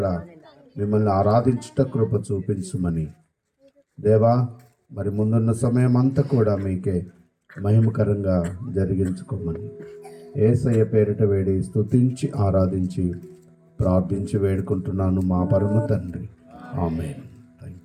మిమ్మల్ని ఆరాధించుట కృప చూపించమని దేవా, మరి ముందున్న సమయం అంతా కూడా మీకే మహిమకరంగా జరిగించుకోమని యేసయ్య పేరిట వేడి స్తుతించి ఆరాధించి ప్రార్థించి వేడుకుంటున్నాను మా పరమ తండ్రి. ఆమేన్.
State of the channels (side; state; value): both; identical; correlation 1.00